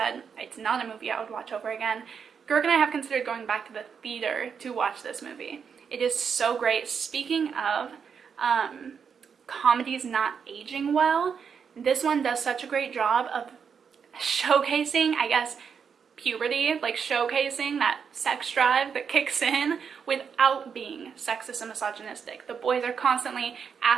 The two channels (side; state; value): left; quieter; 6.7 dB